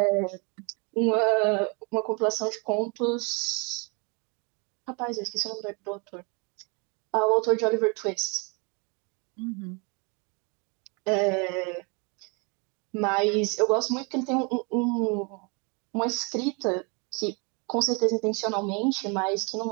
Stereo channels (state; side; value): quieter; left; 32.7 dB